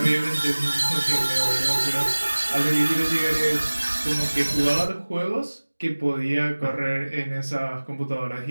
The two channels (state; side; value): inverted; both; correlation -1.00